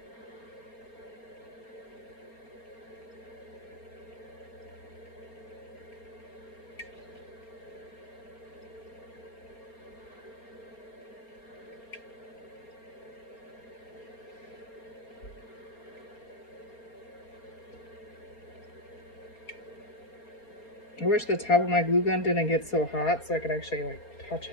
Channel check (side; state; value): right; late; 4.3 ms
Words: I wish the top of my glue gun didn't get so hot so I could actually like touch